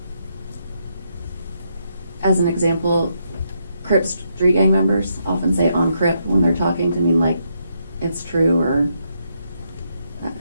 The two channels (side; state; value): both; inverted; correlation -0.78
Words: As an example, Crips street gang members often say on Crip when they're talking to mean like it's true or